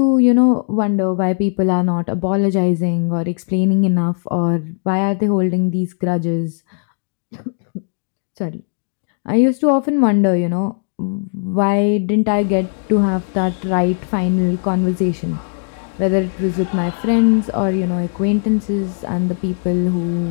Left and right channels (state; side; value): silent; right; digital silence